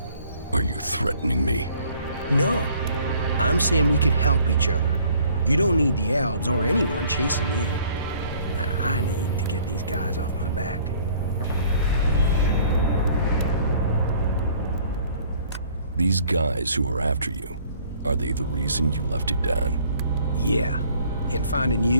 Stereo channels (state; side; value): inverted; both; correlation -0.57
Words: Are you threatening me? No. I'm saying we could help each other. You don't need the Albs or anyone chasing you. And I need to get these guys off my back. These guys who are after you, are they the reason you left it down? Yeah. And finding